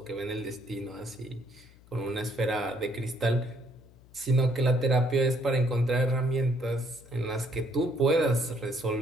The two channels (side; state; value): left; noise; hum, 25 dB below the sound